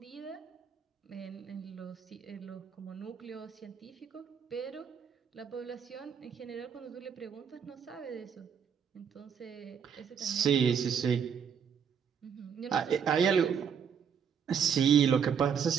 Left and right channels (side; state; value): left; quieter; 7.4 dB